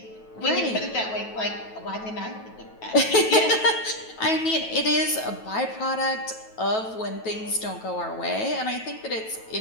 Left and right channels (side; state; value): right; late; 9.2 ms